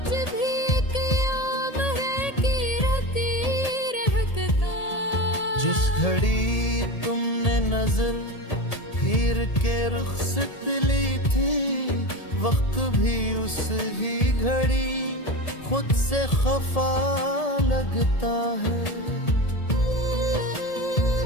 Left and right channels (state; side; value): late; right; 1.8 ms